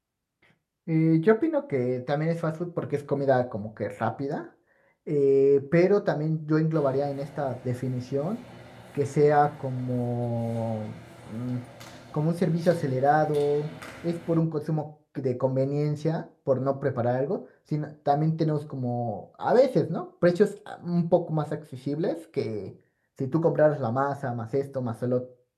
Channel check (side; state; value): both; identical; correlation 1.00